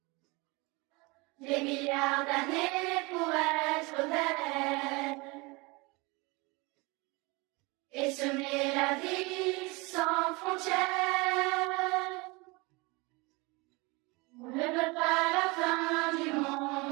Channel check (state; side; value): quieter; left; 25.9 dB